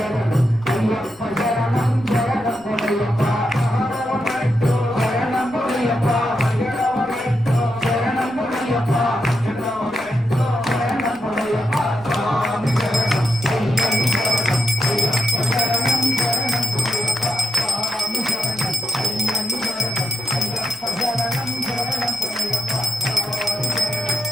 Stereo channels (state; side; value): noise; left; rumble, 29 dB below the sound